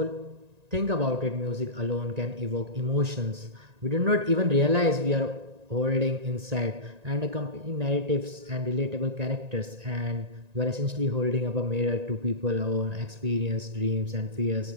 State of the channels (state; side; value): late; left; 1.9 ms